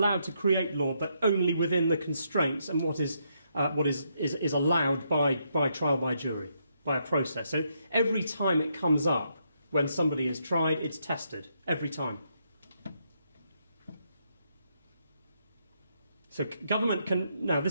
to create law, but only within the constraints and what is allowed by trial by jury, by a process. So every time it comes up, when somebody is tried, it's tested. Every time. So government can... Now,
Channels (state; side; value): inverted; both; correlation -0.77